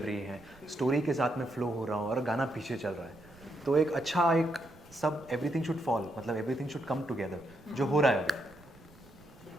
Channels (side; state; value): right; noise; rumble, 24 dB below the sound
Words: है, स्टोरी के साथ में फ्लो हो रहा हो और गाना पीछे चल रहा है, तो एक अच्छा एक सब एवरीथिंग शुड फॉल, मतलब एवरीथिंग शुड कम टुगेदर, जो हो रहा है अभी।